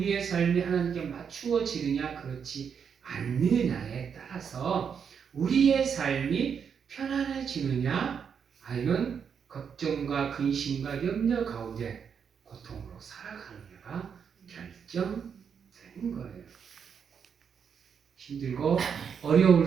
삶이 하나님께 맞추어지느냐 그렇지 않느냐에 따라서 우리의 삶이 편안해지느냐 아니면 걱정과 근심과 염려 가운데 고통으로 살아가느냐가 결정되는 거예요. 힘들고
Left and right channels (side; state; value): left; quieter; 7.0 dB